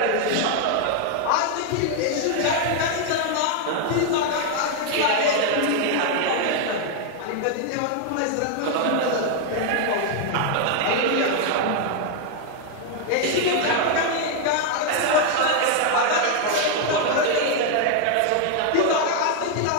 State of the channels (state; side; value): different; both; correlation 0.00